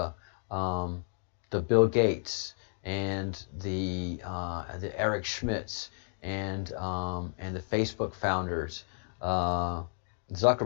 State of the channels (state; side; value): silent; right; digital silence